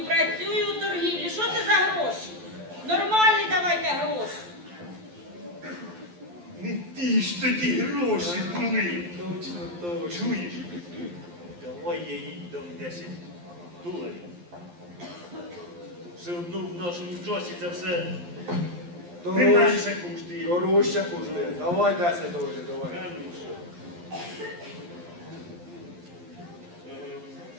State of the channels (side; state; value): left; late; 11 ms